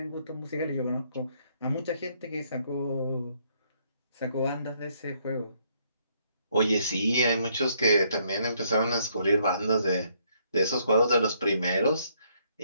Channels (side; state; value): both; inverted; correlation -0.70